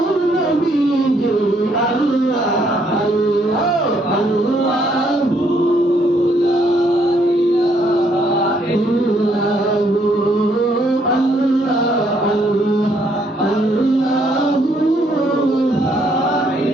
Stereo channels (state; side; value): normal; both; correlation 0.70